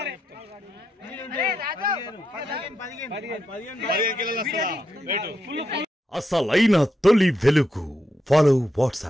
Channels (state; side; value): normal; both; correlation 0.84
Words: అసలైన తొలి వెలుగు. ఫాలో